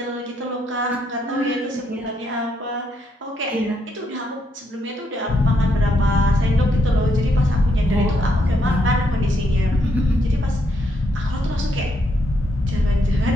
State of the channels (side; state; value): both; normal; correlation 0.76